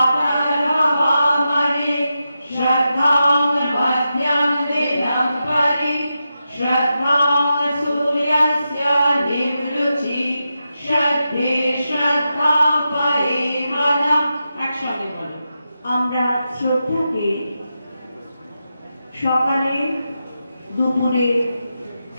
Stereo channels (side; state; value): both; inverted; correlation -0.88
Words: श्रद्धां मध्यं दिनं परि श्रद्धां सूर्यस्य निवृचि श्रद्धे श्रद्धा परे मनः। একসঙ্গে বলো। আমরা শ্রদ্ধাকে সকালে দুপুরে